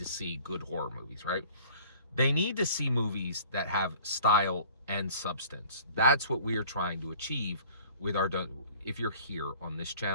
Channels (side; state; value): both; inverted; correlation -0.48